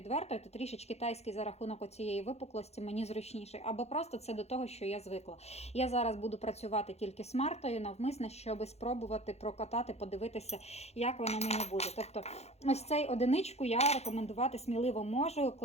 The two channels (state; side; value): late; right; 0.31 ms